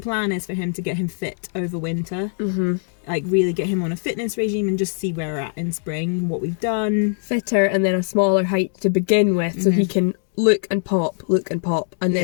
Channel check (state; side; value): silent; right; 64 dB below the other